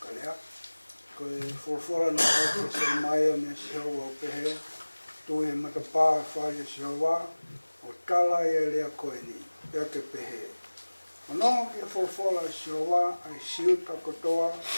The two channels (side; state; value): both; inverted; correlation -1.00